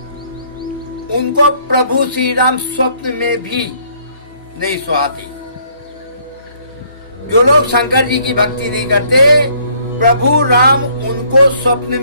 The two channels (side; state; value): both; inverted; correlation -0.63